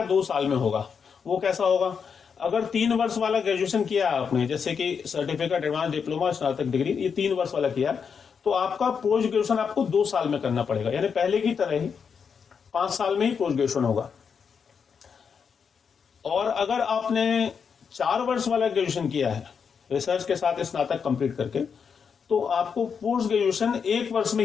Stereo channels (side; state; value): right; quieter; 6.4 dB